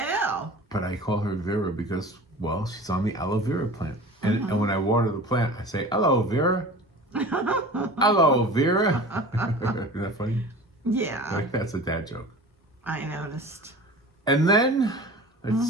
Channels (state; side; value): normal; both; correlation 0.38